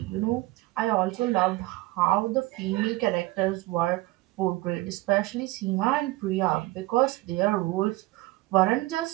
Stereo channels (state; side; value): quieter; left; 19.4 dB